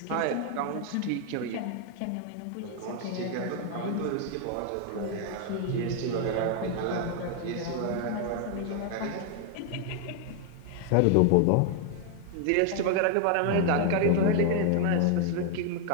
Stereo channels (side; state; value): both; different; correlation 0.00